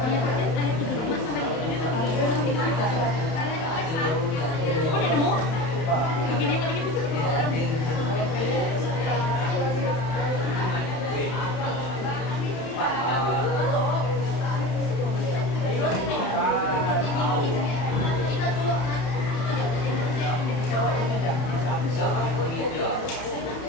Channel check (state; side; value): late; right; 31 ms